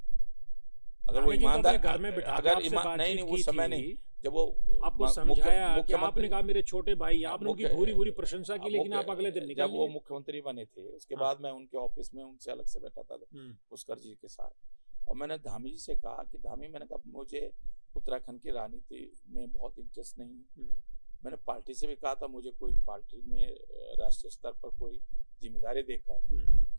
अगर वो ईमानदार घर में बिठा, अगर नहीं वो समय नहीं जब वो आपको समझाया कि आपने कहा मेरे छोटे भाई, आपने उनकी भूरी प्रशंसा की, लेकिन आप अगले दिन निकल जब वो मुख्यमंत्री बने थे उसके बाद मैं उनके ऑफिस में उनसे अलग से बैठा था पुष्कर जी के साथ, और मैंने धामी जी से कहा कि धामी, मैंने कहा मुझे उत्तराखंड की राजनीति में बहुत इंटरेस्ट नहीं है। मैंने पार्टी से भी कहा था मुझे कोई पार्टी में राष्ट्रीय स्तर पर कोई जिम्मेदारी देकर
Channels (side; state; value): both; inverted; correlation -1.00